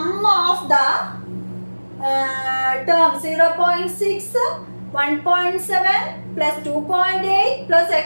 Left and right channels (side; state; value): both; inverted; correlation -1.00